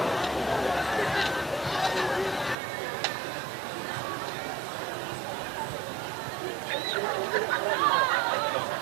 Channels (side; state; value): left; drops out; at 2.6 s